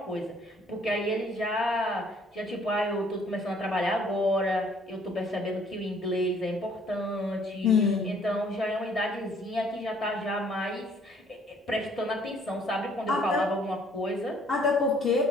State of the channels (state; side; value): normal; both; correlation 0.61